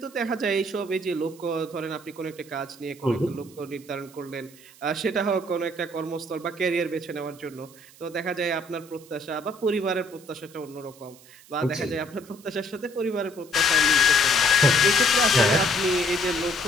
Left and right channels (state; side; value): noise; right; hiss, 23 dB below the sound